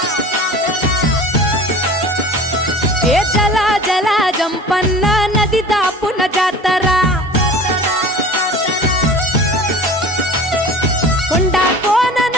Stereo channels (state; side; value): normal; both; correlation 0.41